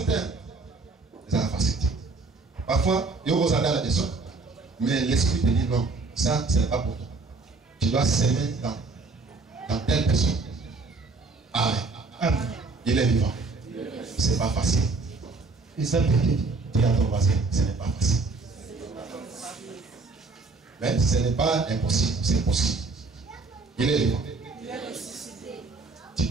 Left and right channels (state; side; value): quieter; left; 3.8 dB